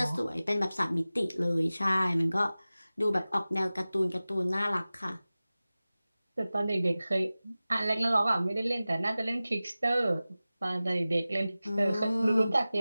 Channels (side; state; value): both; inverted; correlation -0.97